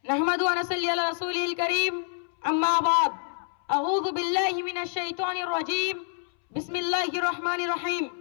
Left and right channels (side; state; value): right; silent; 60 dB below the other